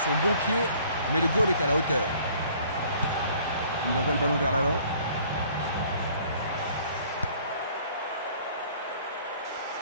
son bon pied, mais le goal est à la hauteur. Il envoie le ballon vers l'avant.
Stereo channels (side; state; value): both; inverted; correlation -0.56